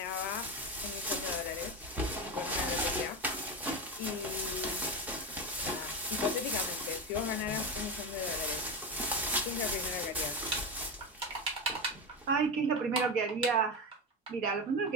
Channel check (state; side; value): normal; both; correlation 0.17